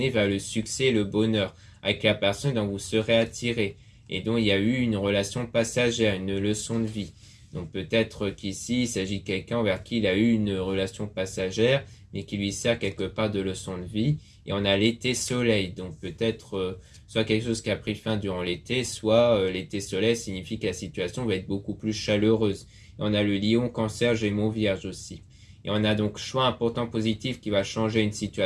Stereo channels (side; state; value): both; identical; correlation 1.00